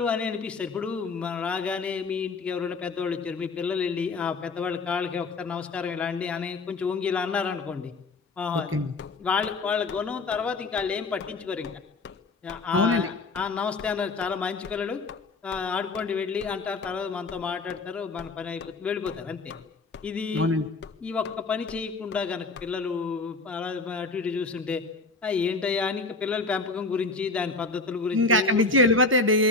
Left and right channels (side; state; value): right; quieter; 3.7 dB